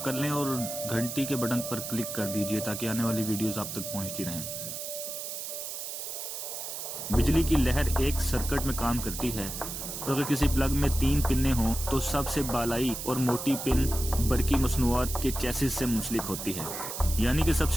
کر لیں اور گھنٹی کے بٹن پر کلک کر دیجئے تاکہ آنے والی ویڈیوز آپ تک پہنچتی رہیں۔ بجلی کی لہر ایک سرکٹ میں کام کرتی ہے، اور اگر کسی پلگ میں 3 پنیں ہوں تو سب سے بالائی اور موٹی پن برقی مصنوعات کے چیسس سے منسلک ہوتی ہے، یعنی کہ سب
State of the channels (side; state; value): right; noise; hiss, 6 dB below the sound